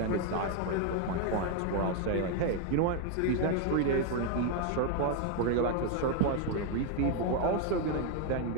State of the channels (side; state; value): both; different; correlation 0.01